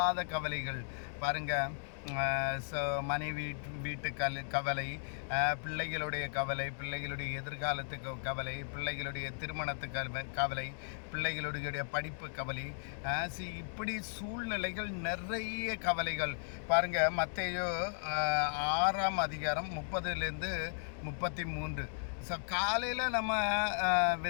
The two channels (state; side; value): silent; right; digital silence